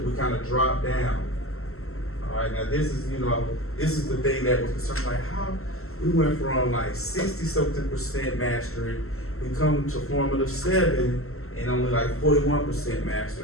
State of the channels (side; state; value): right; late; 0.63 ms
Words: we kind of dropped down. All right, now this is the thing that was concerned, like how we went from like 60-something% mastery, we come to formative 7 and only like 41%